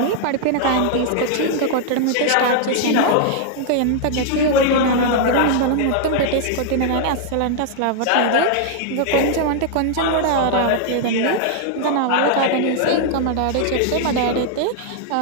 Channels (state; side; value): different; both; correlation -0.01